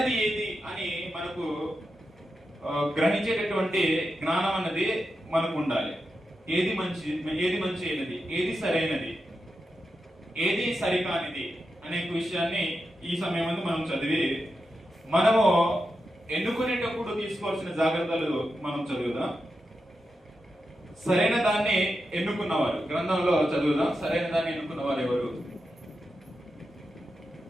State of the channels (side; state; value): both; normal; correlation 0.88